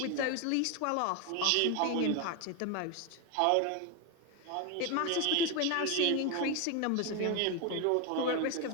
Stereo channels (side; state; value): both; different; correlation 0.01